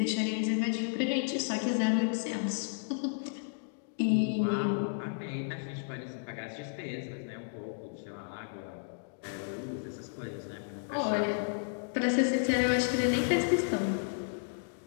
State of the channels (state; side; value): silent; right; digital silence